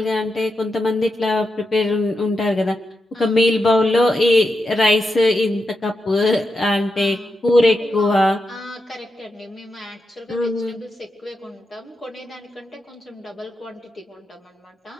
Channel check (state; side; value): normal; both; correlation 0.87